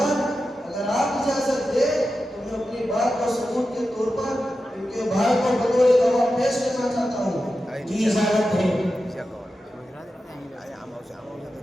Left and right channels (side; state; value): both; normal; correlation 0.91